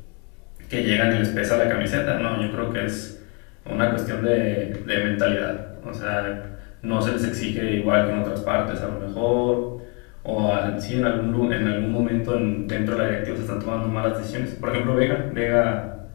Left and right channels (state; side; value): quieter; right; 33.6 dB